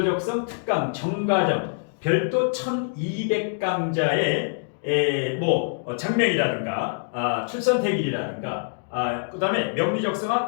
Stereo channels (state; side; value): silent; right; digital silence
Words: 특강 정과정 별도 1200강좌의 장명이라든가 출선택일이라든가 그 다음에